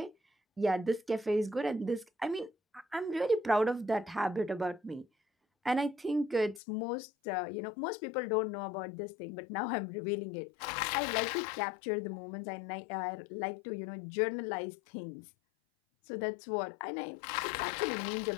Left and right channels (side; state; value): right; drops out; at 6.6 s